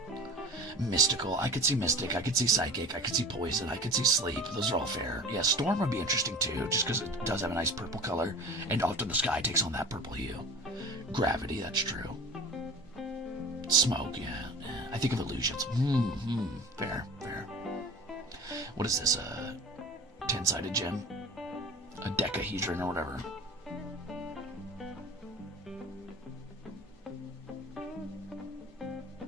Mystical. I could see mystic. I could see psychic. I could see poison. I could see sleep. Those are all fair. Yeah, storm would be interesting too, just because it does have a nice purple color, and often the sky takes on that purple hue. Gravity. That's true. Smoke. Yeah. I think of illusions. Fair. Fair. What is this? A 10-sided gem? A decahedron or whatever.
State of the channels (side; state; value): both; normal; correlation 0.38